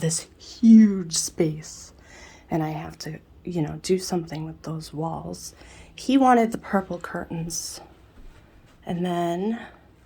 huge space, and I have to, do something with those walls. He wanted the purple curtains, and then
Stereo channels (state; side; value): identical; both; correlation 1.00